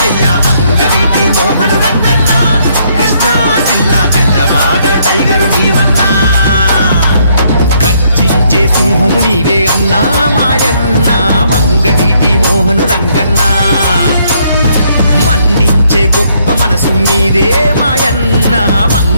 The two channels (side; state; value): both; inverted; correlation -0.70